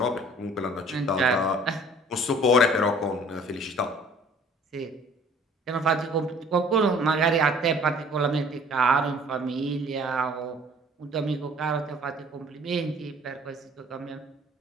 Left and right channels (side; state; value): both; normal; correlation 0.53